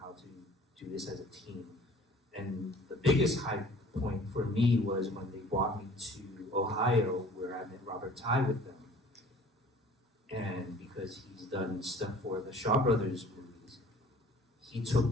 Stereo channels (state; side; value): normal; both; correlation 0.50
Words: to do this as a team. And the biggest high point for me was when they brought me to Ohio, where I met Robert Ty with them. And because he's done stuff for the Shaw Brothers movies, he took